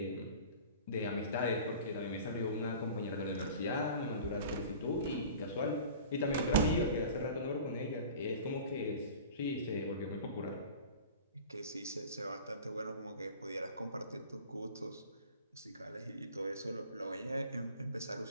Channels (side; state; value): both; inverted; correlation -0.40